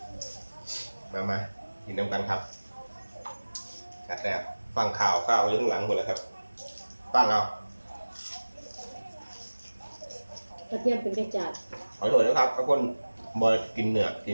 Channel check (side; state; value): both; inverted; correlation -1.00